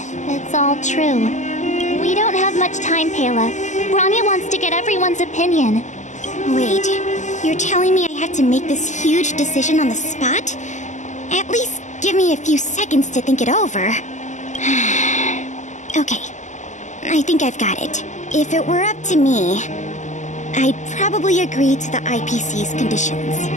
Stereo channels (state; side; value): late; right; 0.34 ms